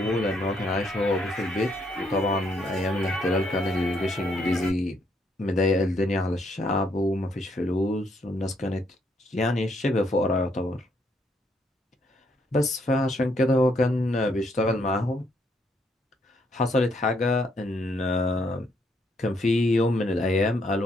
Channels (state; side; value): normal; both; correlation 0.72